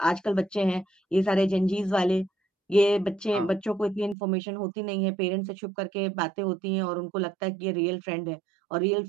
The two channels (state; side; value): drops out; left; at 4.2 s